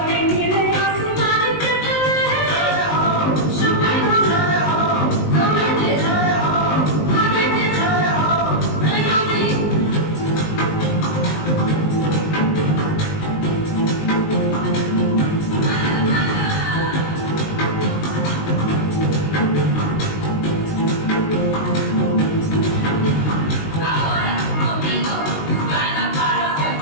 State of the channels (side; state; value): right; late; 19 ms